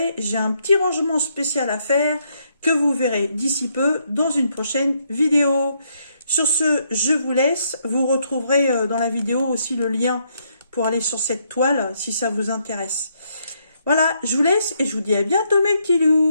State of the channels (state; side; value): inverted; both; correlation -0.74